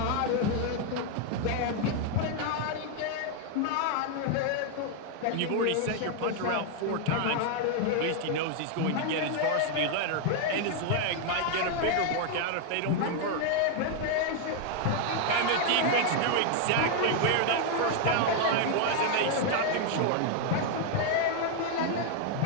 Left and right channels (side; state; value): both; different; correlation 0.00